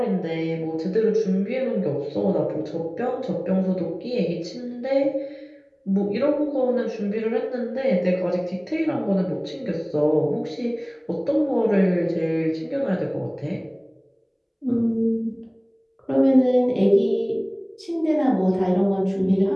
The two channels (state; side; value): identical; both; correlation 1.00